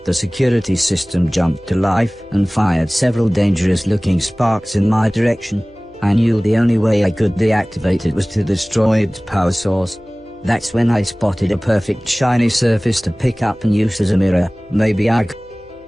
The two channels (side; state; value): left; noise; hum, 29 dB below the sound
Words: The security system jumped to life and fired several dangerous-looking sparks in my direction. I knew the only way I could deactivate it was to destroy its power source. That's when I spotted a perfect shiny surface to pick up and use as a mirror. Maybe I